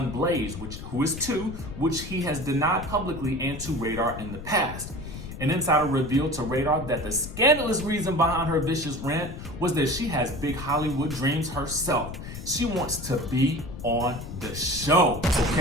Blaze, who is 2, which he has denied publicly and to Radar in the past. An insider revealed to Radar that the scandalous reason behind her vicious rant was that she has big Hollywood dreams herself. She wants to be on the show,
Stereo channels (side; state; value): left; noise; rumble, 10 dB below the sound